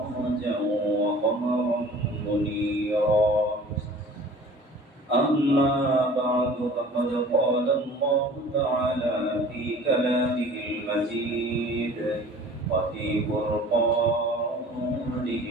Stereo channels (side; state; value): both; normal; correlation 0.46